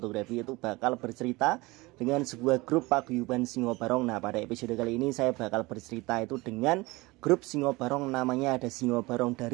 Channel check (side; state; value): left; quieter; 22.3 dB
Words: itu bakal bercerita dengan sebuah grup paguyuban Singo Barong. Nah, pada episode kali ini saya bakal bercerita itu dengan grup Singo Barong, namanya ada Singo Barong